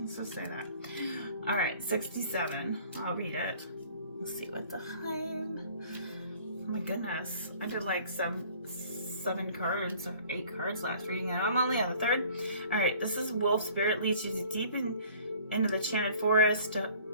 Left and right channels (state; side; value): inverted; both; correlation -0.52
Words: just say that. All right, 67. I'll read it. Let's see what the time. Oh my goodness, I did like 7 cards or 8 cards last reading, and I'm only on the 3rd. All right, this is wolf spirit leads you into the enchanted forest